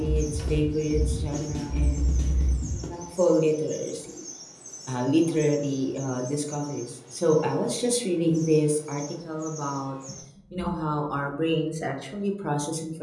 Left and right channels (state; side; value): identical; both; correlation 1.00